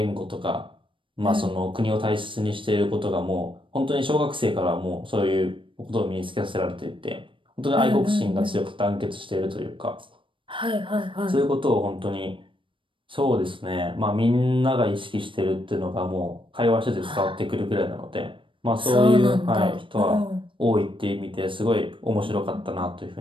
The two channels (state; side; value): late; left; 0.25 ms